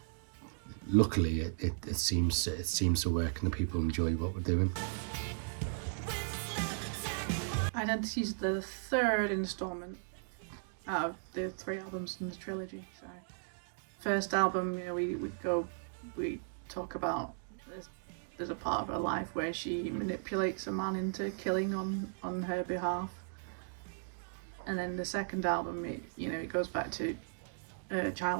luckily it seems to work, and the people enjoy what we're doing. Identity is the third instalment out of the 3 albums in the trilogy. So, first album, you know, we talk about there's a part of her life where she manipulates a man into killing on her behalf, and then the second album, it goes back to her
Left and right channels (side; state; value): left; silent; digital silence